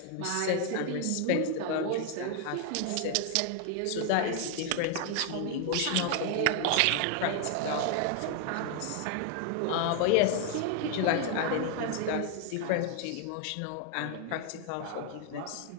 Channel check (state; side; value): different; both; correlation 0.00